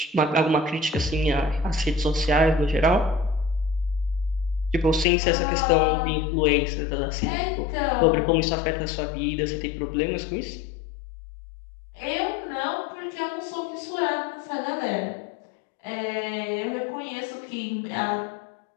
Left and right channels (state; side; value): drops out; right; at 5.1 s